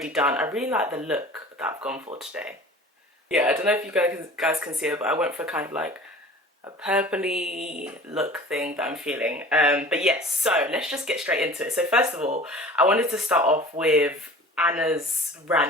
done. I really like the look that I've gone for today. Yeah, I don't know if you guys can see it, but I went for kind of like a purpley look thing that I'm feeling. But yes, so let's just get straight into it. So first of all, I wanted to start off with Anna's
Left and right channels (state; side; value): normal; both; correlation 0.42